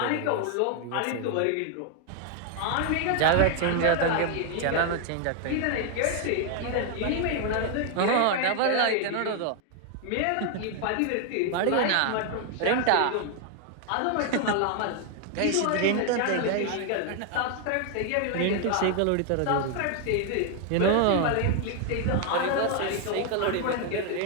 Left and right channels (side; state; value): both; different; correlation 0.00